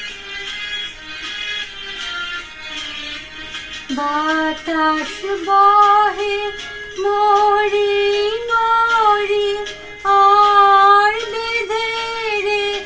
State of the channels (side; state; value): both; identical; correlation 1.00